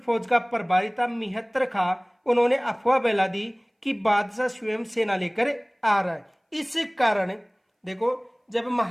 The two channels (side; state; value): both; identical; correlation 1.00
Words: का प्रभारी था मिहत्तर खां, उन्होंने अफवाह फैला दी कि बादशाह स्वयं सेना लेकर आ रहा है। इस कारण देखो जब